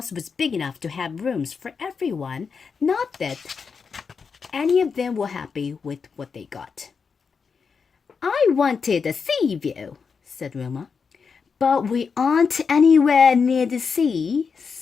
was big enough to have rooms for everyone. Not that any of them were happy with what they got. I wanted a sea view, said Wilma. But we aren't anywhere near the sea,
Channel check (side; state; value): right; quieter; 5.6 dB